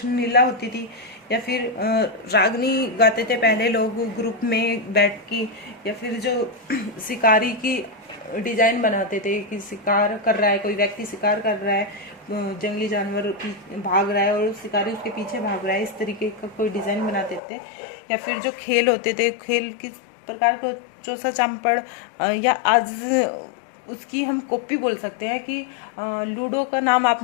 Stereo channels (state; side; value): drops out; right; at 17.4 s